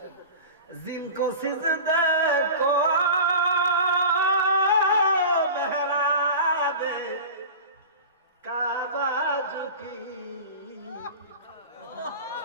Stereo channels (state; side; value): inverted; both; correlation -0.33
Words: জিनको সিজদে কো মেহরাবে কাবা ঝুঁকি।